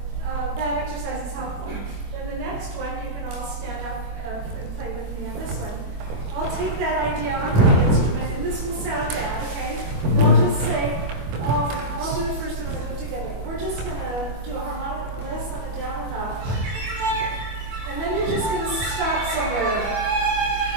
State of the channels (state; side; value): late; left; 25 ms